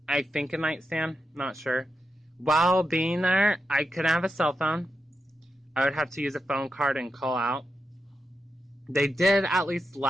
I think a nightstand, not sure. While being there, I couldn't have a cell phone. I would have to use a phone card and call out. They did at least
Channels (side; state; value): both; normal; correlation 0.87